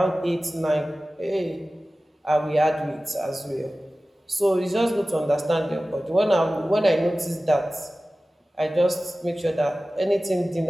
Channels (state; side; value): normal; both; correlation 0.96